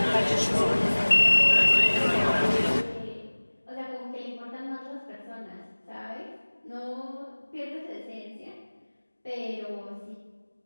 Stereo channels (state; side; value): inverted; both; correlation -1.00